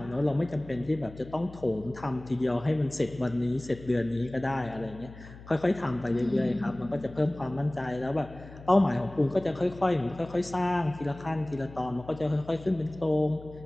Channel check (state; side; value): noise; left; hum, 17 dB below the sound